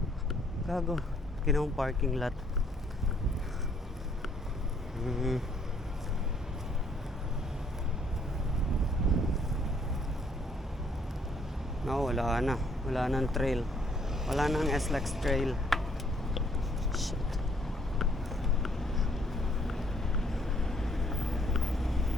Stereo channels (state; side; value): normal; both; correlation 0.66